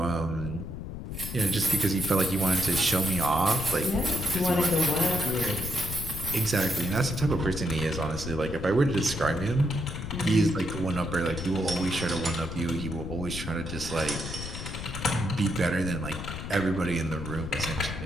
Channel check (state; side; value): noise; left; rumble, 7 dB below the sound